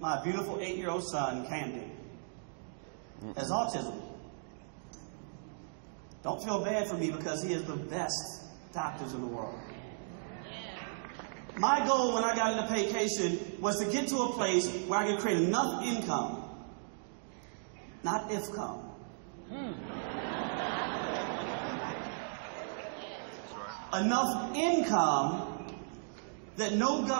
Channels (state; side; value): silent; left; digital silence